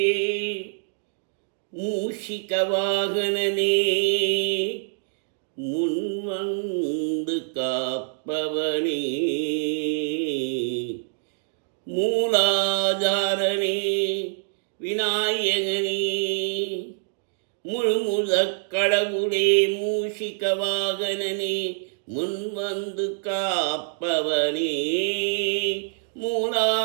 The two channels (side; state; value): left; silent; digital silence